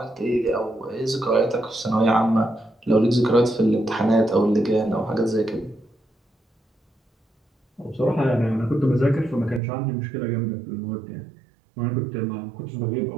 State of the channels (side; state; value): left; drops out; at 9.6 s